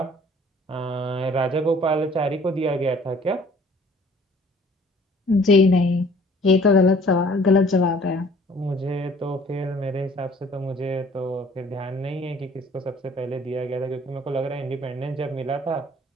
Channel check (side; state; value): both; normal; correlation 0.54